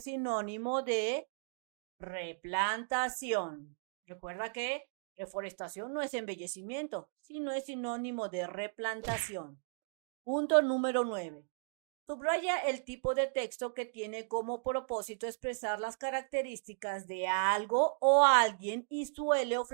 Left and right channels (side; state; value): left; silent; digital silence